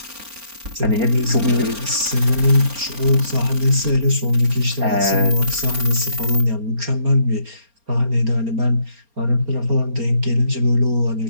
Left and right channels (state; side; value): late; left; 4.3 ms